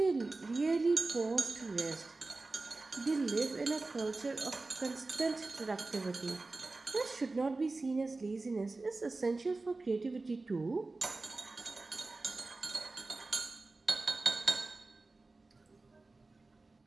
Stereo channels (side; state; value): left; quieter; 3.4 dB